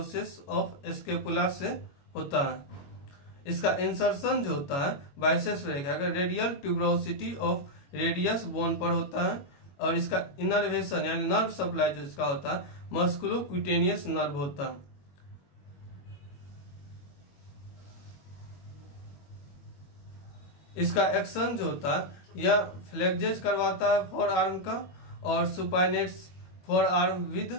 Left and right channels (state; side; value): late; right; 22 ms